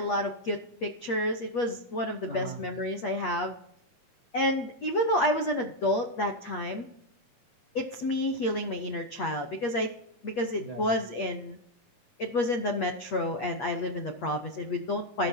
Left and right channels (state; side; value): late; right; 8.4 ms